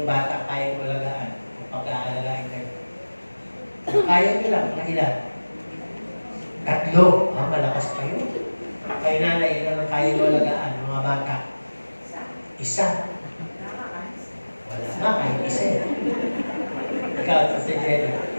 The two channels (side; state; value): both; inverted; correlation -1.00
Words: bata kaya mo alagaan o pagka-alagain kayo? Kaya nyo lang, mga ilan? 3. Malakas pa yun. Kayo nanay, ilan ang kaya mo alagaan, mga bata? 1. Wala nga, kahit 1. Ikaw, si Jenny,